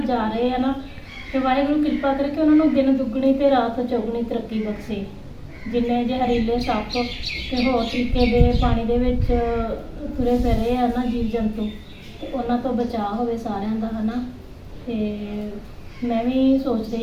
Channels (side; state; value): both; identical; correlation 1.00